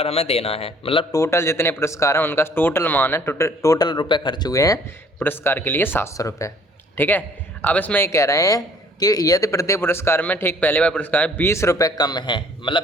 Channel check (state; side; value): normal; both; correlation 0.57